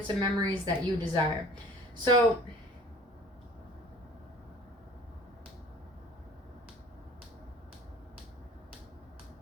and memories that you desire. So,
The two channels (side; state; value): both; normal; correlation 0.47